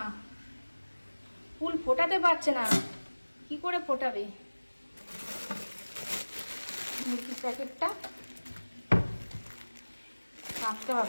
ফুল ফোটাতে পারছে না, কি করে ফোটাবে? মুরগির প্যাকেটটা কাটতে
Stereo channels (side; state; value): both; inverted; correlation -1.00